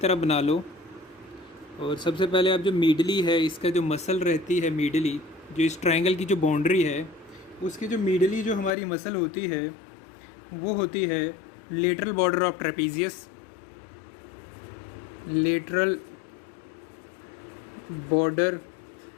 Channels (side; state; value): right; drops out; at 8.7 s